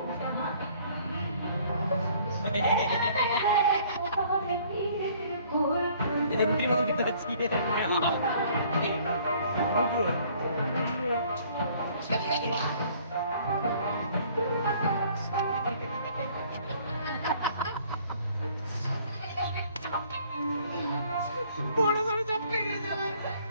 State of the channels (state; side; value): inverted; both; correlation -0.58